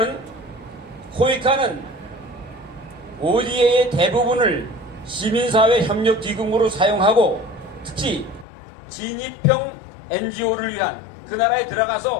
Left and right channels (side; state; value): right; drops out; at 8.5 s